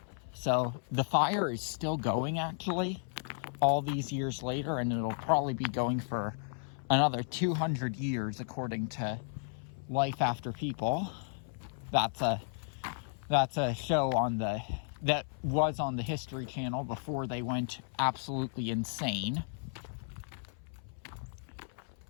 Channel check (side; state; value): right; silent; 55 dB below the other